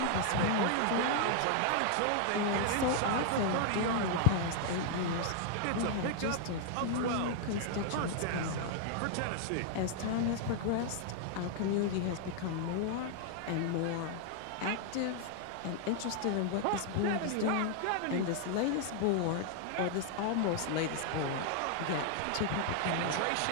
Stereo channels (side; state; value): both; different; correlation 0.00